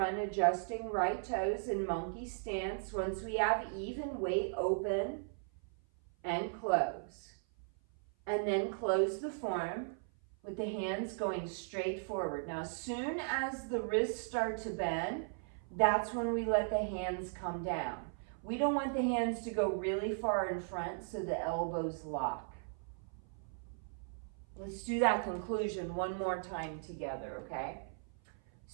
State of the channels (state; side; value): silent; left; 53 dB below the other